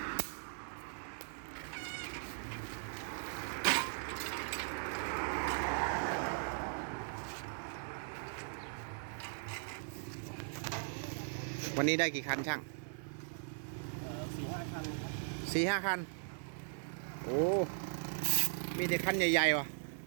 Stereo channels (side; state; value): left; silent; digital silence